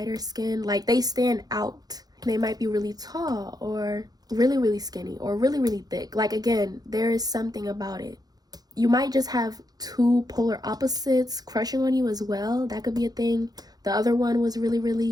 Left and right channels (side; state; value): left; late; 0.19 ms